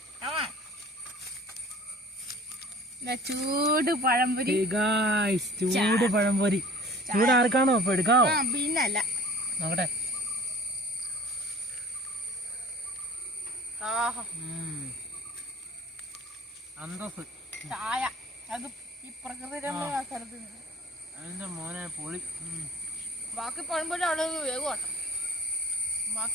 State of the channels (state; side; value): normal; both; correlation 0.47